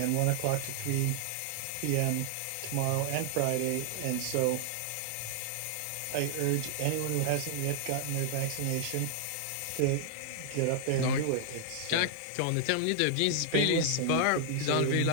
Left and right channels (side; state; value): both; different; correlation 0.00